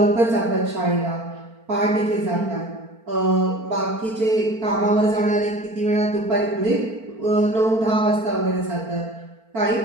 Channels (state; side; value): late; left; 4.4 ms